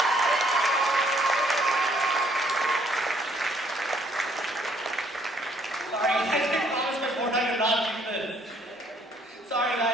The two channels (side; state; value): both; normal; correlation 0.65